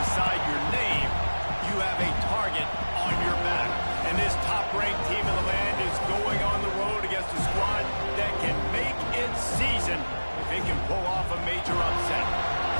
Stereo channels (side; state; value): both; inverted; correlation -1.00